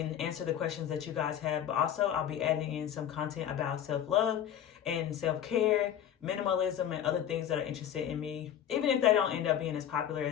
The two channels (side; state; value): right; quieter; 10.1 dB